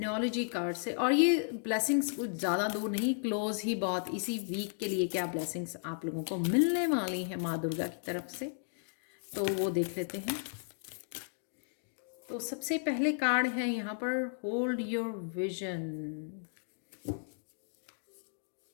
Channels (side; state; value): right; silent; digital silence